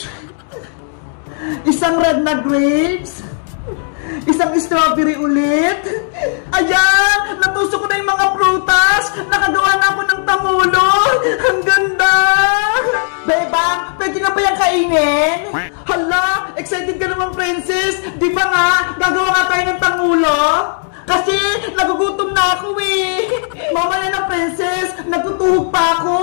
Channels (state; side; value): silent; right; 62 dB below the other